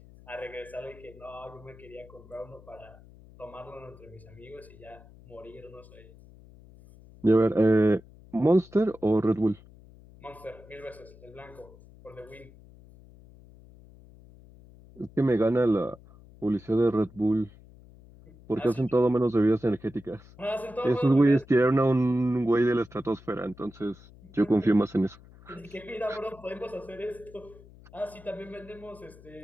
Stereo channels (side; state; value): left; noise; hum, 22 dB below the sound